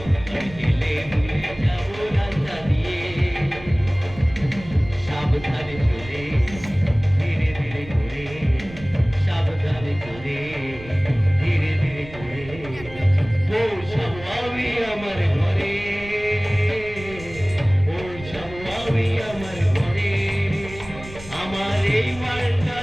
আমি হেলে দুলে যাব রাস্তা দিয়ে সাবধানে চলে ধীরে ধীরে করে সাবধানে চলে ধীরে ধীরে করে পৌঁছাবো আমি আমার ঘরে পৌঁছাবো আমি আমার ঘরে আমার এই মালটা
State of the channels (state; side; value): noise; right; rumble, 16 dB below the sound